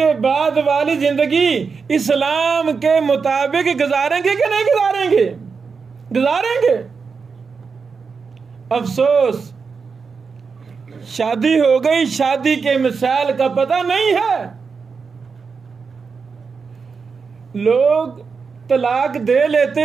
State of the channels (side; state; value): left; quieter; 5.3 dB